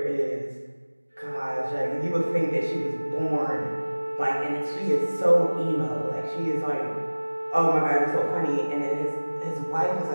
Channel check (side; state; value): both; inverted; correlation -1.00